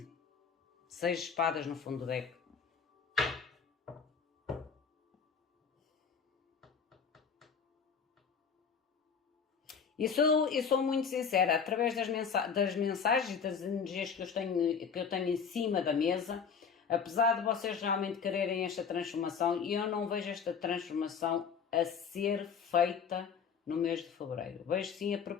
6 espadas no fundo do deck. E sou muito sincera, através das mensagens e das energias que eu tenho em cima da mesa, apesar de vocês realmente quererem esta transformação, eu não vejo esta transformação a ser feita no mês de fevereiro. Vejo sim a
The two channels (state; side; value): quieter; right; 6.4 dB